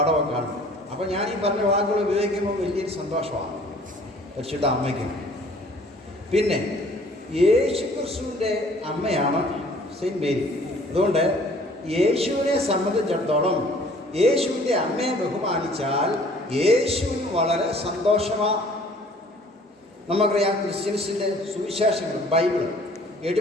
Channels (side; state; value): both; normal; correlation 0.54